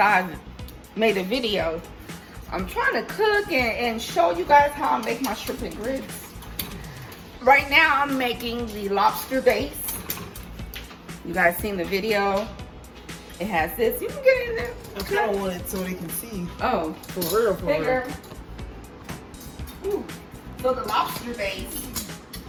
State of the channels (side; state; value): both; identical; correlation 1.00